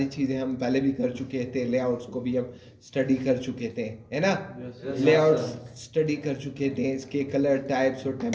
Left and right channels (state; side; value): identical; both; correlation 1.00